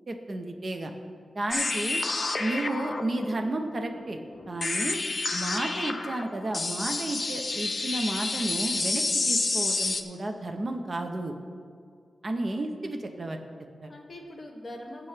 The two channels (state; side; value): normal; both; correlation 0.92